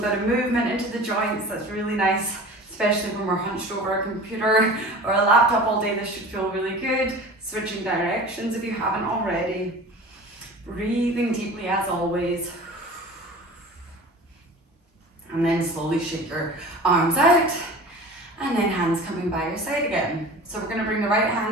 bit of movement into the joints, that's really nice. Especially when we're hunched over a computer or a laptop all day, this should feel really good. Switching directions if you haven't already. Breathing deeply as always. And then slowly shake your arms out. And then hands coming by your side again. So we're going to bring the right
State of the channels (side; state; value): both; normal; correlation 0.38